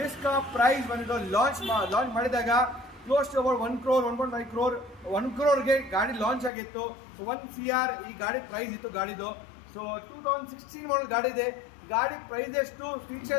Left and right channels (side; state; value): right; drops out; at 6.5 s